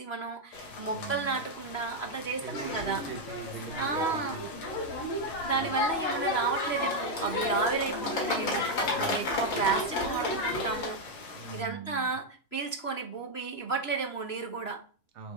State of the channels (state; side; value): late; right; 3.0 ms